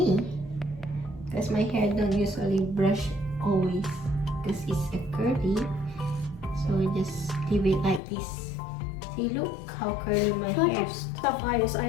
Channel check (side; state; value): right; drops out; at 8.0 s